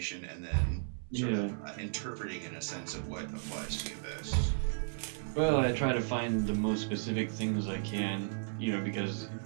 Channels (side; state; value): left; silent; digital silence